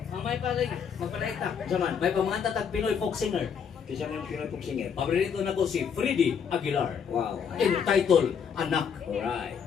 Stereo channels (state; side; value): quieter; right; 7.1 dB